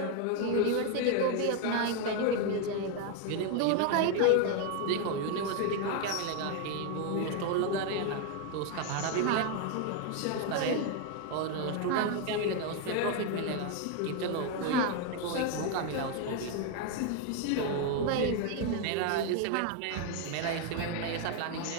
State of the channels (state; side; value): different; both; correlation 0.01